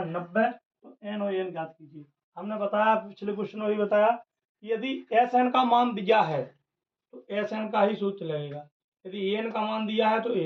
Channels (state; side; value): identical; both; correlation 1.00